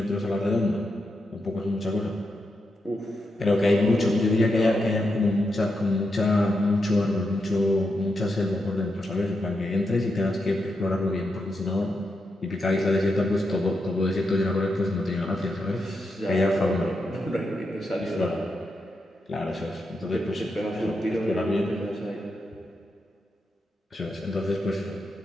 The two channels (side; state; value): both; normal; correlation 0.85